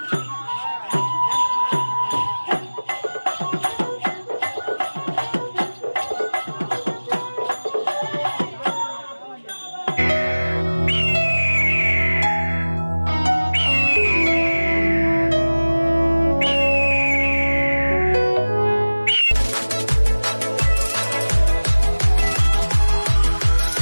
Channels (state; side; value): inverted; both; correlation -1.00